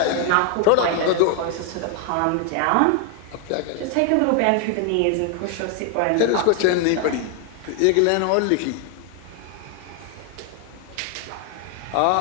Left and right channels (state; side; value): different; both; correlation 0.00